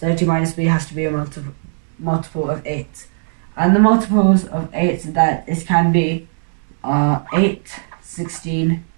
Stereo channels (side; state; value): left; silent; 67 dB below the other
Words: 30 minus B has to be a multiple of 8, and the multiples of 8 that it can be are 8, 16,